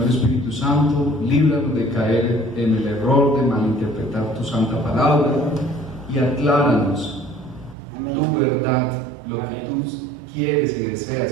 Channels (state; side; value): drops out; left; at 7.8 s